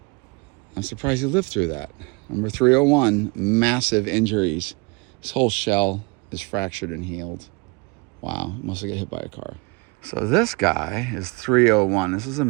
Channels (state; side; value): quieter; left; 29.2 dB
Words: I'm surprised he lived through that. Number 301, massive injuries. His whole shell is fractured and healed. Wow, must have got hit by a car. So this guy is 301. This is a